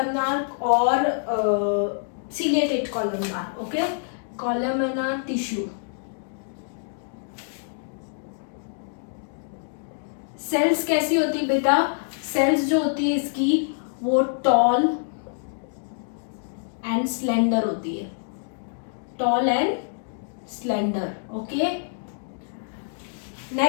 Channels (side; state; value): right; silent; digital silence